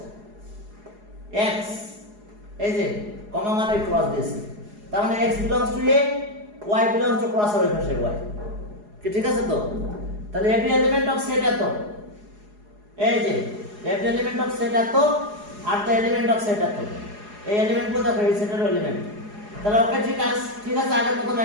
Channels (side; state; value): left; late; 4.8 ms